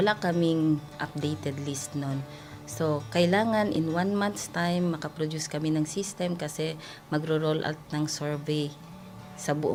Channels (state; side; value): identical; both; correlation 1.00